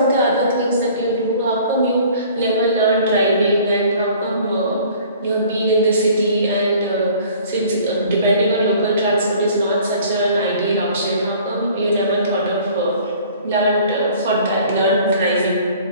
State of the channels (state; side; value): inverted; both; correlation -0.51